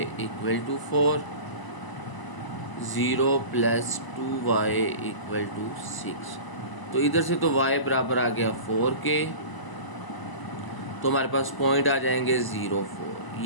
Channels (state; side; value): late; right; 1.0 ms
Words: equal to 4, 0 plus 2y equal to 6। तो इधर से तो y बराबर आ गया 4 के, तो हमारे पास पॉइंट आ जाएंगे 0 4,